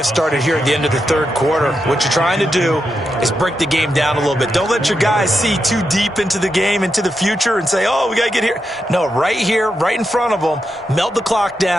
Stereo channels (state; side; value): normal; both; correlation 0.85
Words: started here at the end of the 3rd quarter. What you're trying to do is break the game down a little bit. Don't let your guys see too deep into the game, into the future, and say, oh, we got to get here. No, right here, right in front of them, melt the clock